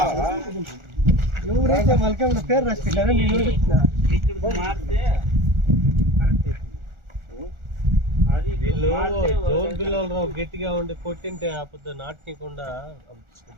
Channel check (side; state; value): left; late; 1.4 ms